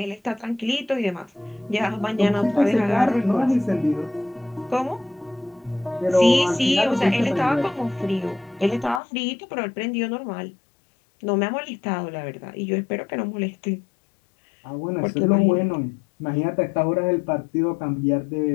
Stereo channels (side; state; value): right; drops out; at 9.0 s